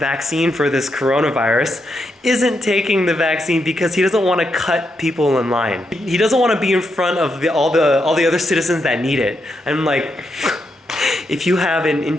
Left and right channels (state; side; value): normal; both; correlation 0.82